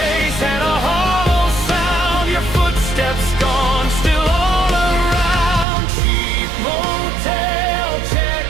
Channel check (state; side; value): drops out; left; at 5.7 s